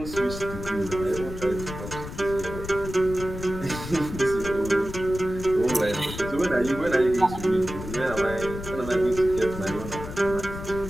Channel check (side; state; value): left; noise; rumble, 9 dB below the sound